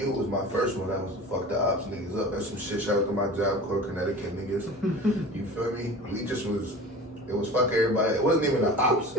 was my first one. That was the fuck the ops niggas up. That's some shit. Shout out to my job corps, Connecticut niggas. You feel me? We just was. It was fuck everybody. It wasn't even the ops.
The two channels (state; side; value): normal; both; correlation 0.37